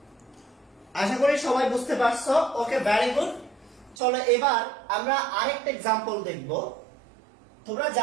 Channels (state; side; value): drops out; left; at 4.0 s